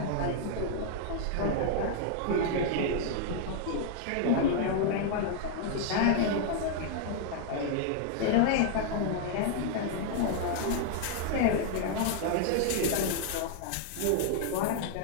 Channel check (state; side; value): different; both; correlation 0.00